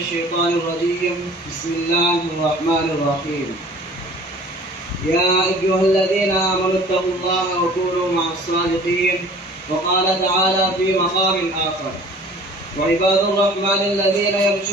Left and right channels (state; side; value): normal; both; correlation 0.48